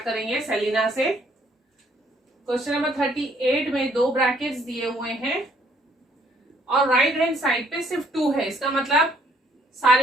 करेंगे Selina से। क्वेश्चन नंबर 38 में दो ब्रैकेट्स दिए हुए हैं और राइट हैंड साइड पे सिर्फ 2 है। इसका मतलब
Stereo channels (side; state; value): both; normal; correlation 0.65